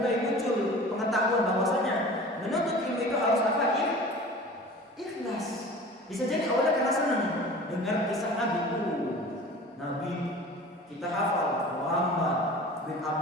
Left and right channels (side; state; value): both; normal; correlation 0.40